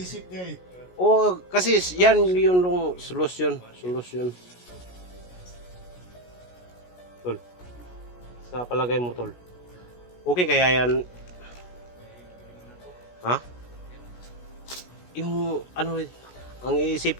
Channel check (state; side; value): late; right; 16 ms